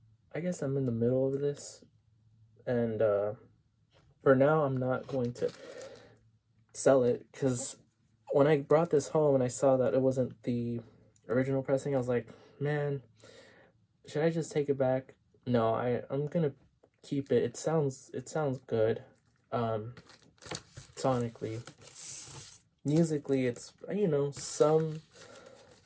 I guess I'm in the middle of this, and for now I'm not going to sell it, because when I brought this home and I saw that it wasn't the original pressing, I was like, man, should I just take it back? No, I'm gonna keep it. It sounds good. Sonically, musically, it's, you know, some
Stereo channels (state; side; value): identical; both; correlation 1.00